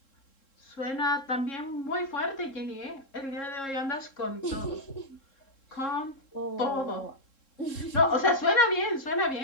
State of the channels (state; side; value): late; right; 3.7 ms